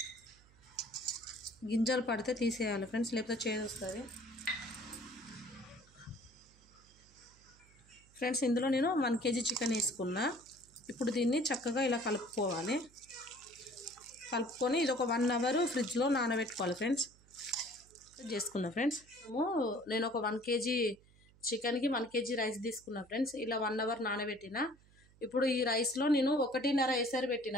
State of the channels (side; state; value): right; noise; hum, 27 dB below the sound